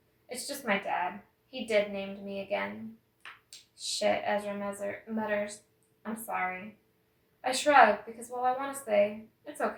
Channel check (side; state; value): both; identical; correlation 1.00